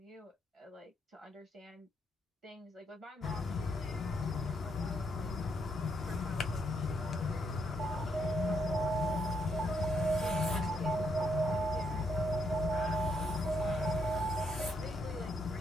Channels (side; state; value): both; normal; correlation 0.76